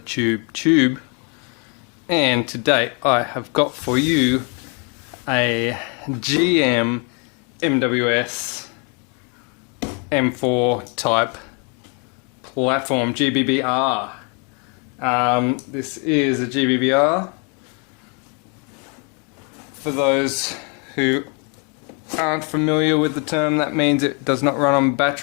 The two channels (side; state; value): right; quieter; 36.1 dB